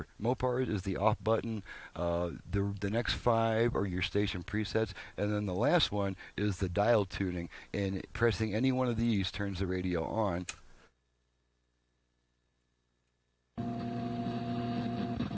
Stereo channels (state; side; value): identical; both; correlation 1.00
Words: Mopars is the off button. The next 5 are your station presets, and then the last one is the dial tuning, and pressing any one of these turns the radio on.